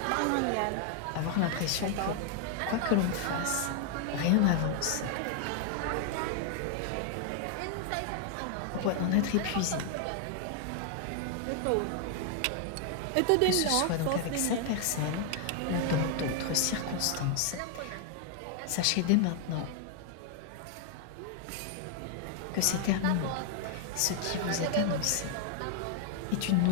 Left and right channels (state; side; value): different; both; correlation 0.00